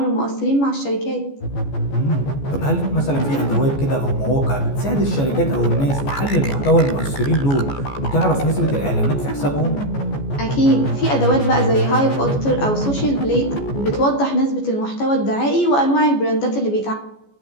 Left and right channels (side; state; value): right; late; 14 ms